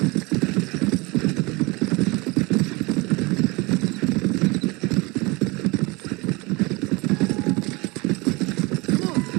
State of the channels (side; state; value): left; quieter; 25.5 dB